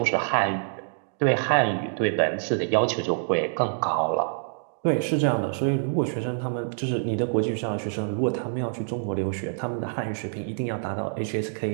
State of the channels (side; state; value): left; silent; 61 dB below the other